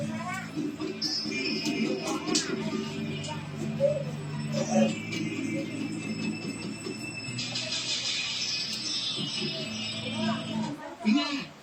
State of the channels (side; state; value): both; identical; correlation 1.00